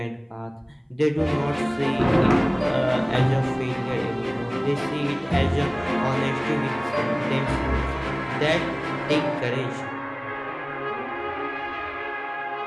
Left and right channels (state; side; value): identical; both; correlation 1.00